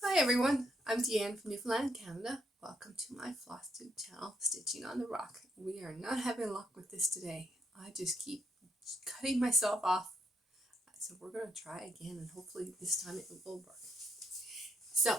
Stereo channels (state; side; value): normal; both; correlation 0.76